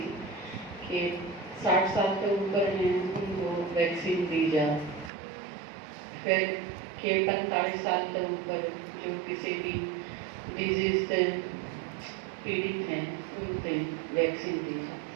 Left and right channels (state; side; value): drops out; left; at 5.1 s